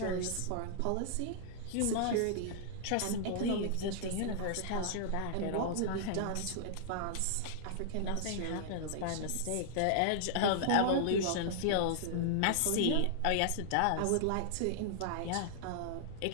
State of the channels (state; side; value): different; both; correlation -0.01